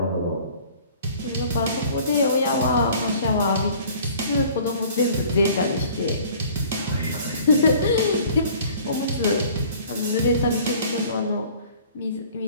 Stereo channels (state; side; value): inverted; both; correlation -0.50